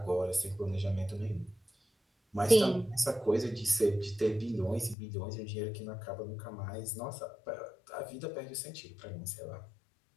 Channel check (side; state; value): right; drops out; at 5.0 s